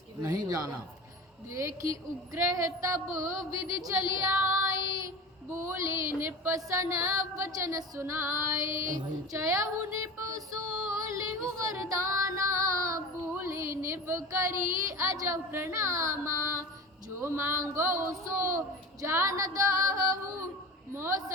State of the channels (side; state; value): both; normal; correlation 0.33